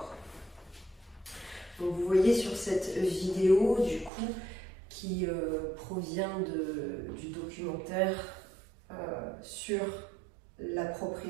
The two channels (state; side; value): drops out; left; at 4.1 s